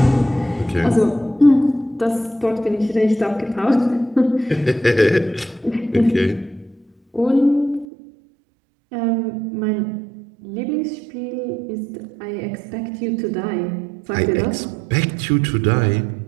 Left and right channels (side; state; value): left; drops out; at 7.9 s